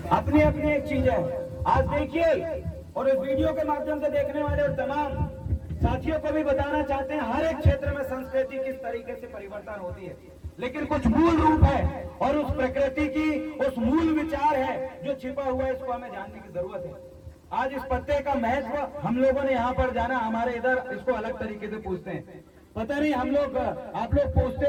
अपनी अपनी एक चीज है। आज देखिए, और इस वीडियो के माध्यम से देखने वाले और तमाम साथियों को भी बताना चाहते हैं, हर एक क्षेत्र में संस्कृति किस तरीके से परिवर्तन होती है, लेकिन कुछ मूल रूप है और उस प्रकृति की उस मूल विचार है जो छिपा हुआ है, इसको हमें जानने की जरूरत है। आज इस पत्ते का महत्व हम लोगों ने यहाँ पर जाना, हमारे इधर इसको अलग तरीके से पूछते हैं। पता नहीं हम लोग, आप लोग पूछते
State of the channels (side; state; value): both; identical; correlation 1.00